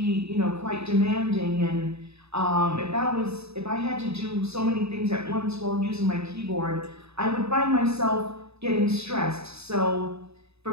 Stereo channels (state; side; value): late; left; 0.79 ms